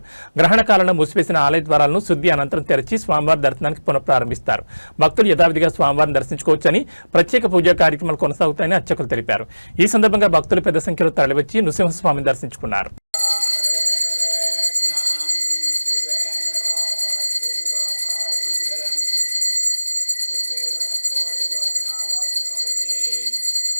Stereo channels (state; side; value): inverted; both; correlation -1.00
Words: గ్రహణ కాలంలో మూసివేసిన ఆలయ ద్వారాలను శుద్ధి అనంతరం తెరచి స్వామివారి దర్శనానికి పునఃప్రారంభిస్తారు. భక్తులు యథావిధిగా స్వామివారిని దర్శించుకోవచ్చని, ప్రత్యేక పూజా కార్యక్రమాలు కొనసాగుతాయని అర్చకులు తెలిపారు. ఈ సందర్భంగా భక్తులు పెద్ద సంఖ్యలో తరలివచ్చి నృసింహస్వామిని దర్శించుకున్నారు.